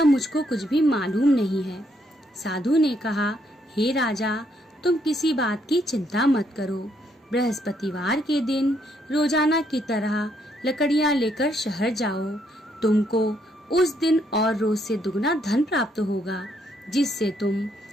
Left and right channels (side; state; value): both; normal; correlation 0.73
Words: मुझको कुछ भी मालूम नहीं है। साधु ने कहा, हे राजा, तुम किसी बात की चिंता मत करो। बृहस्पतिवार के दिन रोजाना की तरह लकड़ियां लेकर शहर जाओ। तुमको उस दिन और रोज से दुगना धन प्राप्त होगा, जिससे तुम